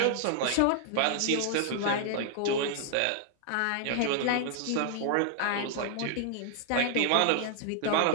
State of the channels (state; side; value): different; both; correlation 0.00